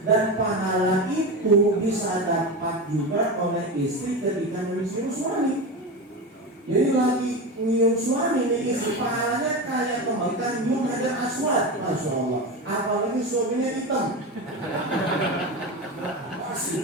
Dan pahala itu bisa dapat juga oleh istri ketika mencium suami. Jadi lagi nyium suami nih istri, pahalanya kayak kembalikan nyium hajar aswad. Masya Allah. Apalagi suaminya hitam. Pas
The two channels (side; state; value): both; normal; correlation 0.21